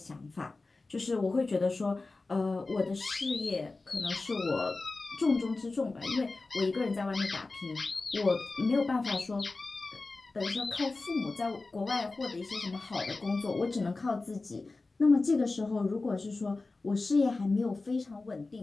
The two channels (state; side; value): quieter; right; 3.5 dB